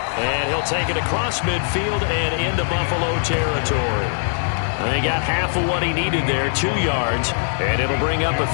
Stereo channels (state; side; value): silent; right; 63 dB below the other